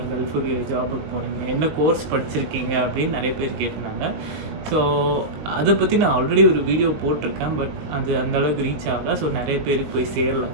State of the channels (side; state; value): left; late; 20 ms